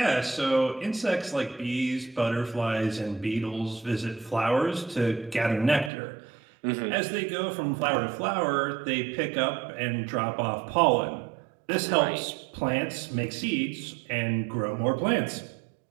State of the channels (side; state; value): left; drops out; at 5.9 s